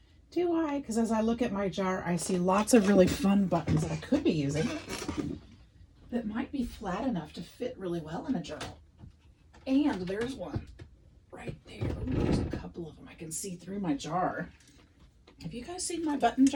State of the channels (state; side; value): identical; both; correlation 1.00